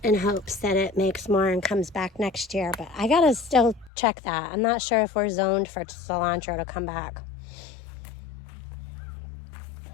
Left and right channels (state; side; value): drops out; right; at 3.9 s